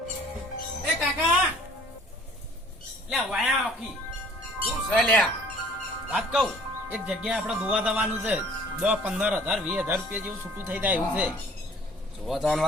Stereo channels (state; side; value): normal; both; correlation 0.53